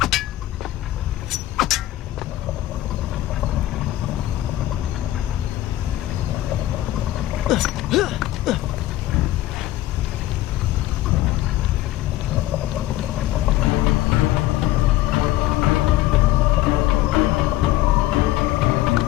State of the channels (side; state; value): right; quieter; 15.2 dB